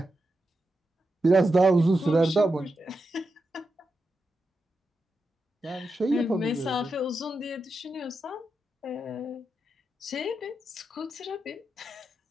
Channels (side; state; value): both; normal; correlation 0.88